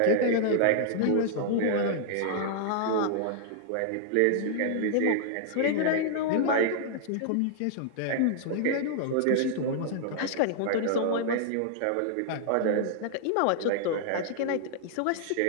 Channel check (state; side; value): different; both; correlation -0.01